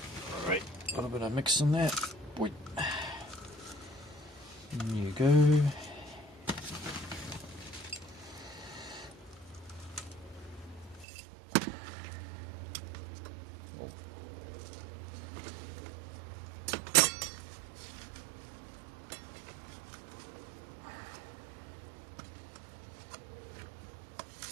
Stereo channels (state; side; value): drops out; left; at 11.1 s